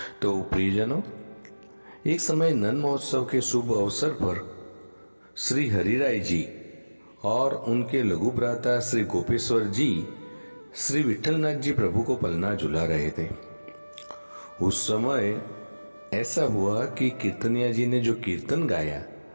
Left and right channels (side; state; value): both; inverted; correlation -1.00